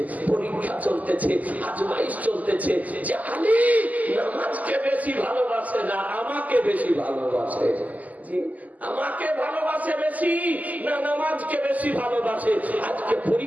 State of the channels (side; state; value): left; late; 0.077 ms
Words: পরীক্ষা চলতেছে, আজমাইশ চলতেছে, যে আলী নামাজকে বেশি ভালোবাসে না আমাকে বেশি ভালোবাসে, আমাকে ভালোবাসে বেশি না নামাজকে বেশি ভালোবাসে। আজকে